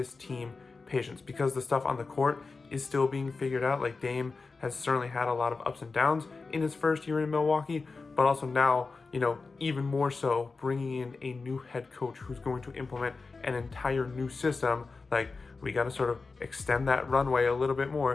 team patience because the stuff on the court is still being figured out. Like Dame has certainly had a lot of ups and downs in his first year in Milwaukee, but also now, even more so, bringing in a new head coach who's going to implement an entire new system. Like, we got to sort of extend that runway a little bit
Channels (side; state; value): right; quieter; 4.1 dB